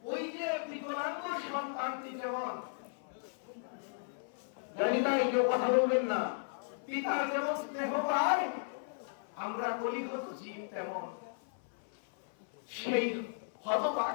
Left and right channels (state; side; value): silent; right; 54 dB below the other